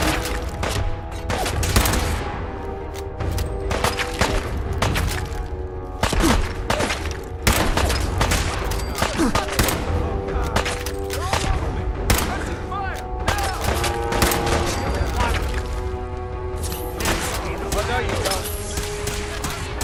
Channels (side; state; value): both; identical; correlation 1.00